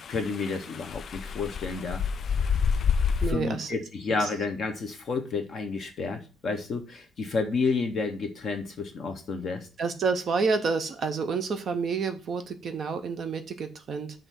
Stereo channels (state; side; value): normal; both; correlation 0.70